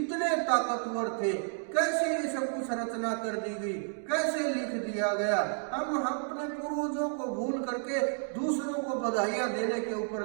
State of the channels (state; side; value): silent; left; digital silence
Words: ताकतवर थे, कैसे ये सब कुछ रचना कर दी गई, कैसे लिख दिया गया। हम अपने पूर्वजों को भूल करके दूसरों को बधाइयां देने के ऊपर